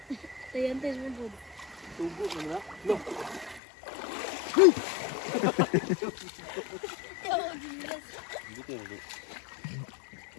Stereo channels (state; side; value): drops out; right; at 3.6 s